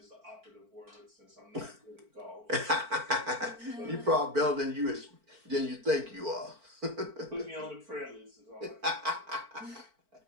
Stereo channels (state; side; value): late; left; 4.5 ms